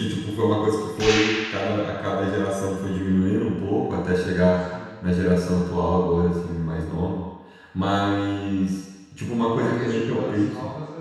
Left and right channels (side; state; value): both; identical; correlation 1.00